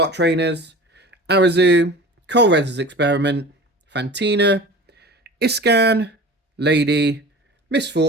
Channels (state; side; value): normal; both; correlation 0.37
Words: trainers, Arazu, Colreza's Experiment, Fantina, Iscan, Lady,